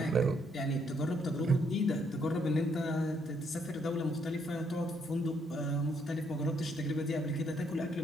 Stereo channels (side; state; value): right; noise; hum, 27 dB below the sound